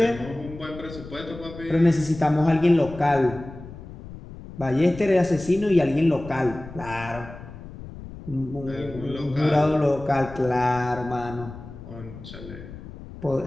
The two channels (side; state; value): left; noise; rumble, 14 dB below the sound